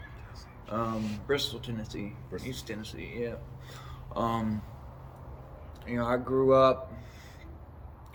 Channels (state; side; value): identical; both; correlation 1.00